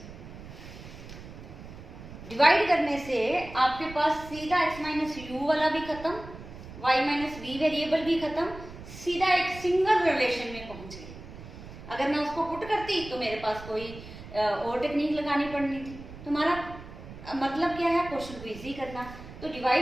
Divide करने से आपके पास सीधा x माइनस यू वाला भी खत्म, y माइनस v वेरिएबल भी खत्म, सीधा एक सिंगल रिलेशन में पहुंच गए। अगर मैं उसको पुट करती तो मेरे पास कोई और टेक्निक लगानी पड़नी थी। तुम्हारा मतलब क्या है, क्वेश्चन को इजी करना। तो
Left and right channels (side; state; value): right; noise; rumble, 14 dB below the sound